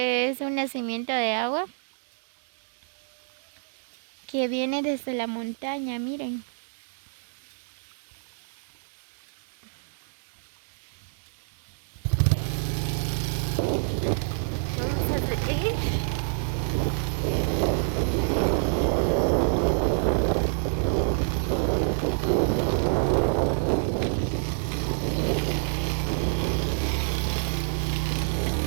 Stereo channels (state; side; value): silent; left; 60 dB below the other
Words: es un nacimiento de agua que viene desde la montaña, miren. Vamos a seguir.